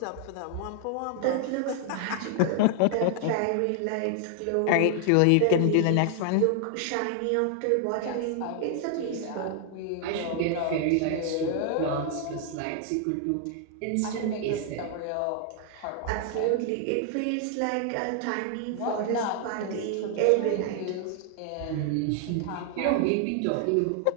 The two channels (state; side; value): different; both; correlation 0.00